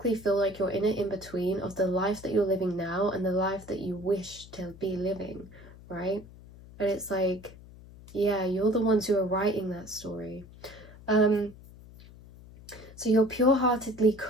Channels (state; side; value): noise; left; hum, 19 dB below the sound